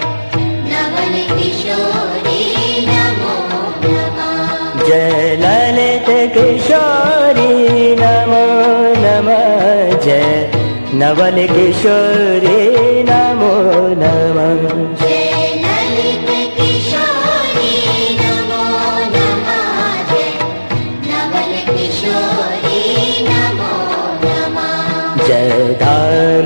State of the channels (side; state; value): both; inverted; correlation -1.00